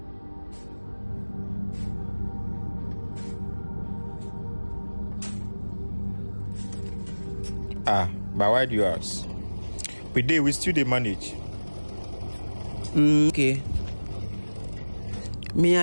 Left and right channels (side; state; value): both; inverted; correlation -1.00